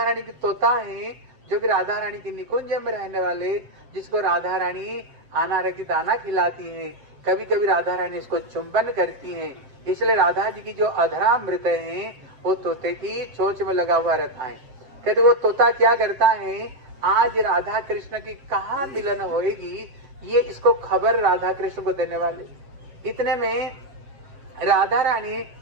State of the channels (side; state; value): left; late; 7.6 ms